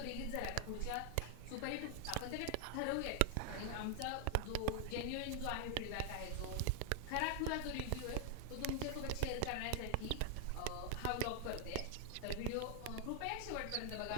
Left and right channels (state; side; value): different; both; correlation 0.00